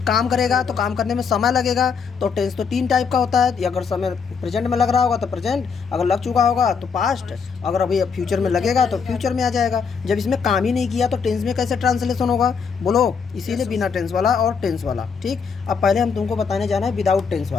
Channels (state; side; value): quieter; right; 5.9 dB